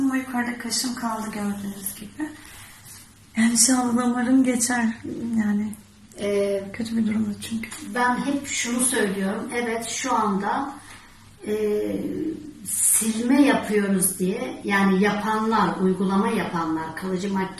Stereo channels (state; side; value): identical; both; correlation 1.00